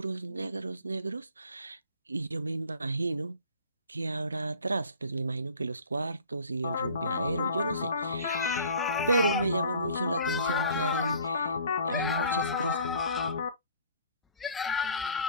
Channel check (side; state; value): both; inverted; correlation -0.49